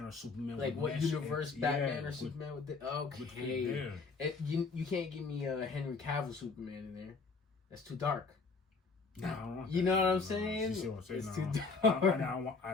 or Superman like would what universe Batman or Superman would okay. You can't give me a Henry Cavill Superman in there. That's too dark. No, I don't want you that. know what I'm saying? You see what I'm saying? It's No. too dark.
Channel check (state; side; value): quieter; right; 4.3 dB